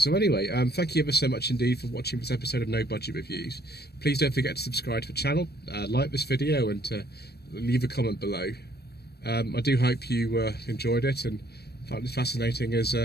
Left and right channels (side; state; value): right; late; 0.47 ms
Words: anyway, thank you ever so much indeed for watching this episode of No Budget Reviews. Please don't forget to subscribe to the channel, like this video, and to leave a comment below. I do hope you enjoyed it and found it fascinating as